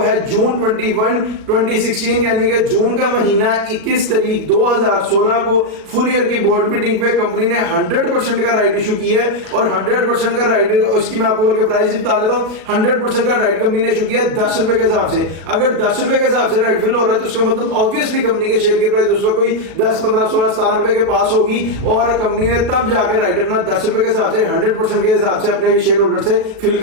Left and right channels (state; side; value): late; left; 37 ms